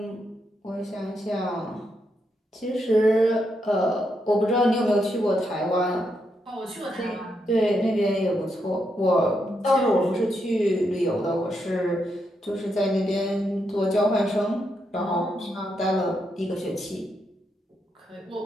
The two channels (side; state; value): both; normal; correlation 0.81